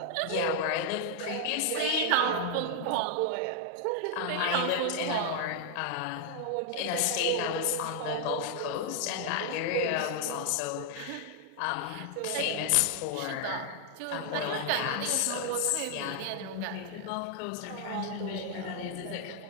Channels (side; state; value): both; different; correlation 0.00